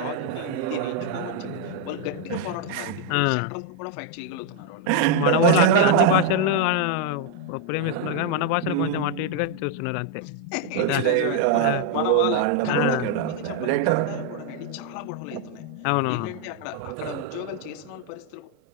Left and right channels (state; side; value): different; both; correlation 0.00